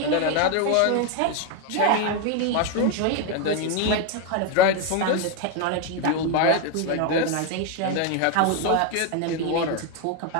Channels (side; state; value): both; different; correlation 0.01